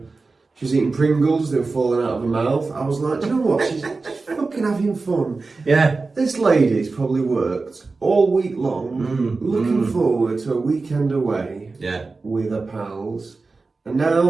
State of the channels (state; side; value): quieter; left; 3.9 dB